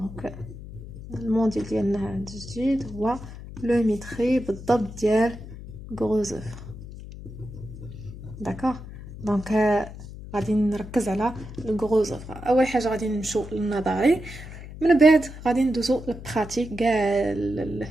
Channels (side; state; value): left; noise; hum, 13 dB below the sound